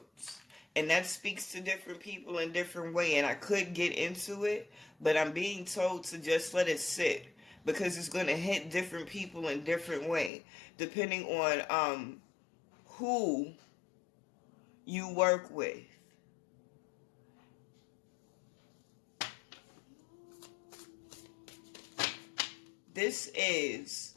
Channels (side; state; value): right; drops out; at 10.3 s